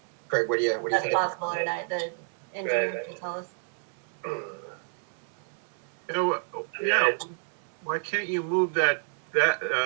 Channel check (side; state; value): left; silent; digital silence